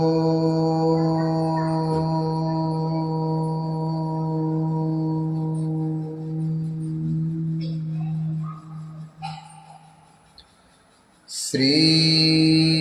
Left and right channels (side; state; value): both; identical; correlation 1.00